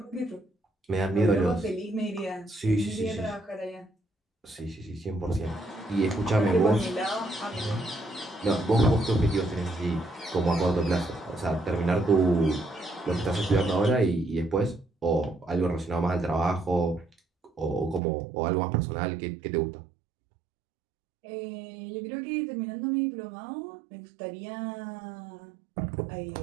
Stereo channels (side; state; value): left; drops out; at 18.0 s